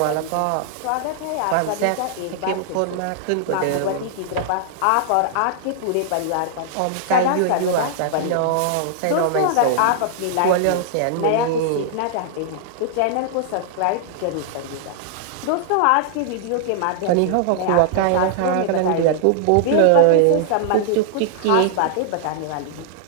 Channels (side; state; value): both; different; correlation -0.01